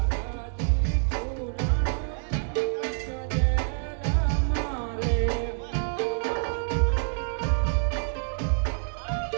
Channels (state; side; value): silent; left; digital silence